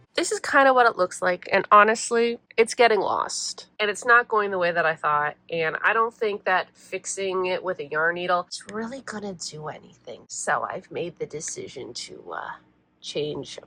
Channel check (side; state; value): both; identical; correlation 1.00